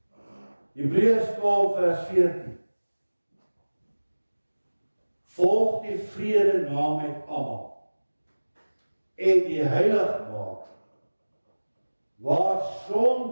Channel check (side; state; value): both; inverted; correlation -1.00